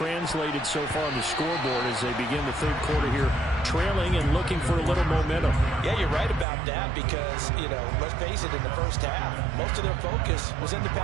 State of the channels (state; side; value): drops out; left; at 6.5 s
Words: so far on the scoreboard as they begin the third quarter here, trailing and looking for a little momentum. Yeah, you're right about that because, you know, let's face it, in the first half, most of their focus was in the